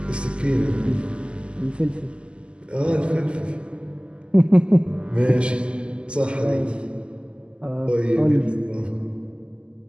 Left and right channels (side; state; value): left; late; 0.051 ms